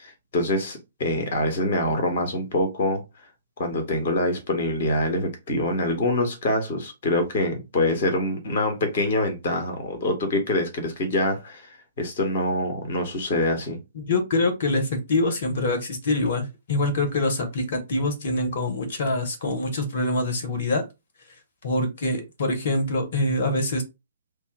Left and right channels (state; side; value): inverted; both; correlation -0.44